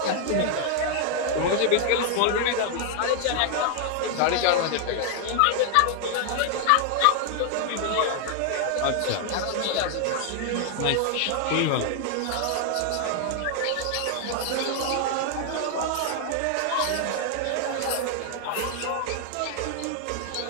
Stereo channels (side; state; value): both; different; correlation 0.00